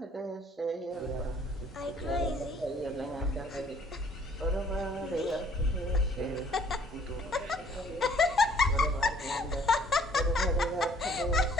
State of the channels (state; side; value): normal; both; correlation 0.59